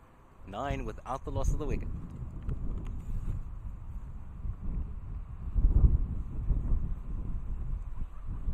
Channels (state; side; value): identical; both; correlation 1.00